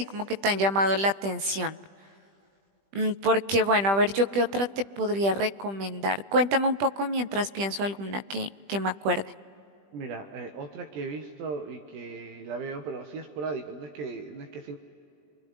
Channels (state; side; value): late; left; 20 ms